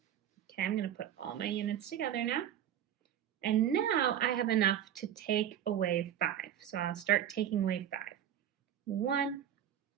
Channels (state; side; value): quieter; left; 10.2 dB